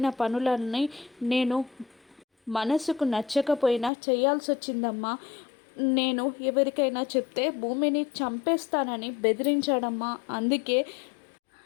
పనులన్నీ నేను మనసుకు నచ్చకపోయినా చేయాల్సి వచ్చిందమ్మా. నేను ఎవరికైనా చెప్తే భూమిని చంపేస్తానని బెదిరించాడమ్మా. అందుకే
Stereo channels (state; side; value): drops out; right; at 3.9 s